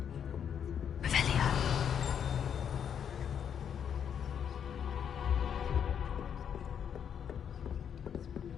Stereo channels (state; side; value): quieter; right; 8.3 dB